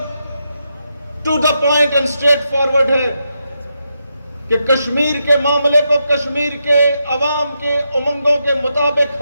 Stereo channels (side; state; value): both; inverted; correlation -0.84